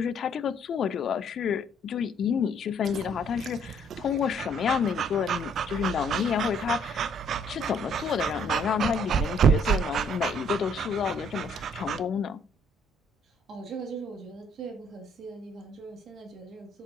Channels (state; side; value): normal; both; correlation 0.63